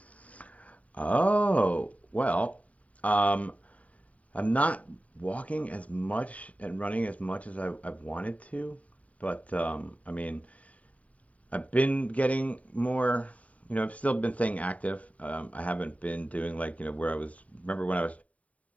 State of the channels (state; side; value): late; right; 0.068 ms